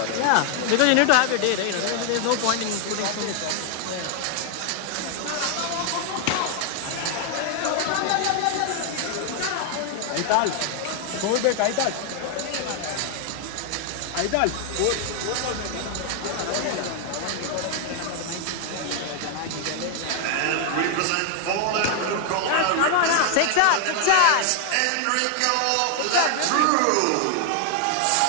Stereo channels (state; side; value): different; both; correlation 0.00